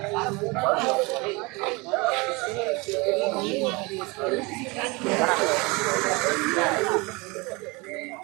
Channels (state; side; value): quieter; left; 26.2 dB